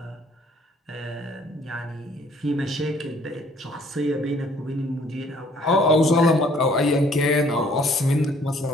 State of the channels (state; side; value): normal; both; correlation 0.60